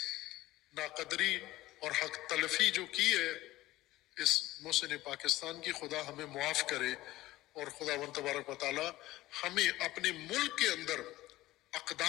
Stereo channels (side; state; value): right; quieter; 17.0 dB